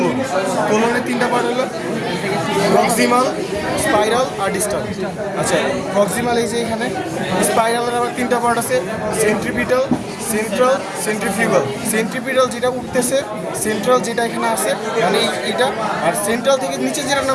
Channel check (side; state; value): both; identical; correlation 1.00